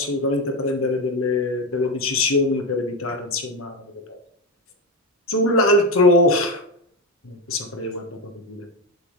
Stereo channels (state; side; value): normal; both; correlation 0.13